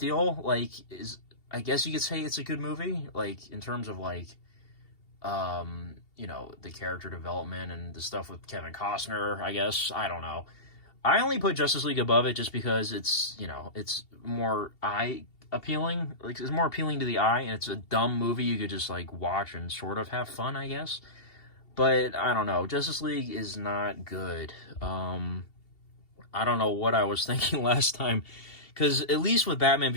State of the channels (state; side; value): late; right; 2.7 ms